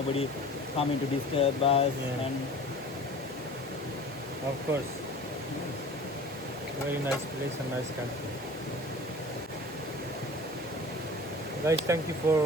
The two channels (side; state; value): both; normal; correlation 0.41